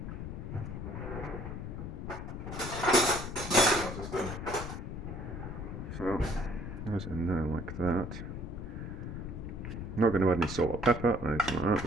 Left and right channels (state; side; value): noise; left; rumble, 6 dB below the sound